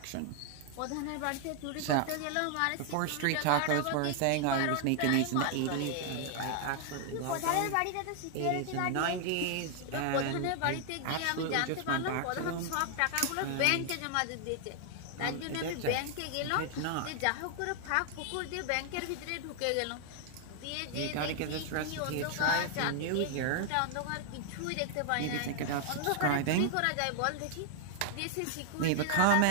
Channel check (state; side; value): different; both; correlation 0.00